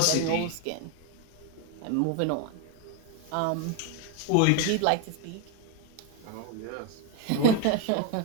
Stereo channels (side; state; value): both; different; correlation 0.02